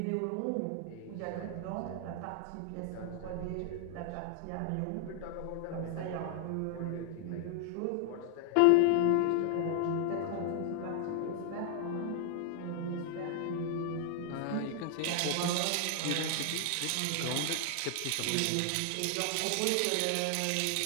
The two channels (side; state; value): both; different; correlation 0.00